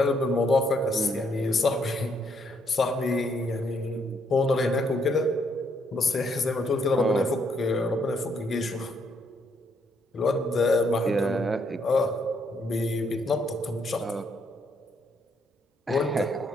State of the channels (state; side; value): normal; both; correlation 0.72